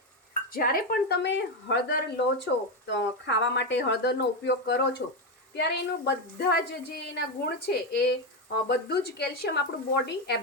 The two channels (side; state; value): both; normal; correlation 0.10